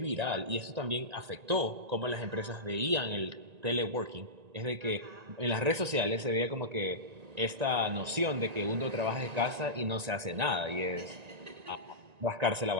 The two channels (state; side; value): late; left; 1.9 ms